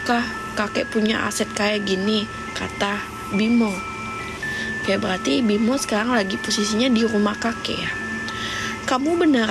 kakek punya aset kayak gini, kata Bimo. Oke, berarti Bimo sekarang lagi posisinya di rumah kakek ya. Kamu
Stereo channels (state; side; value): identical; both; correlation 1.00